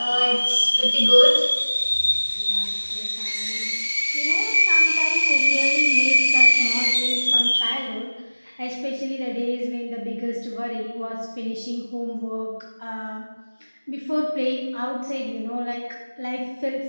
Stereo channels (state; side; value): inverted; both; correlation -1.00